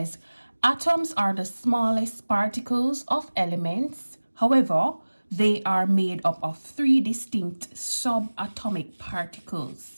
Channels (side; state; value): both; inverted; correlation -1.00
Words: atoms are the smallest particles of elements. However, they are made up of 3 distinct subatomic